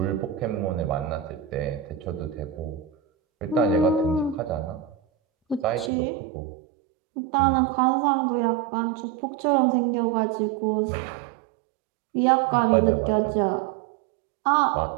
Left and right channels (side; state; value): left; drops out; at 5.9 s